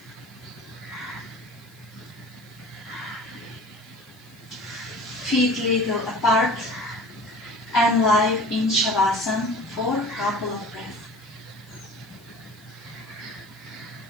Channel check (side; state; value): left; noise; hiss, 27 dB below the sound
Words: Feet little apart and lie in Shavasana for a couple of breaths.